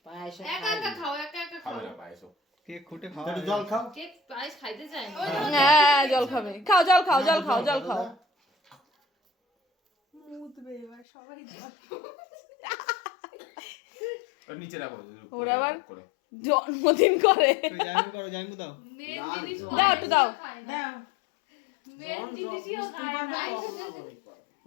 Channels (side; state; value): right; drops out; at 11.1 s